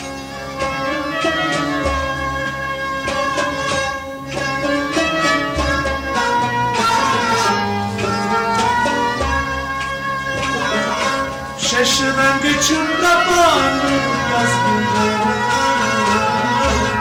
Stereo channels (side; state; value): both; identical; correlation 1.00